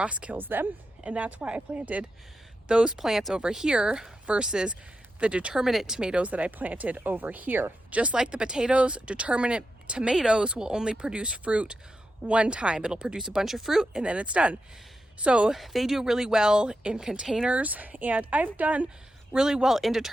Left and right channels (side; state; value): both; normal; correlation 0.88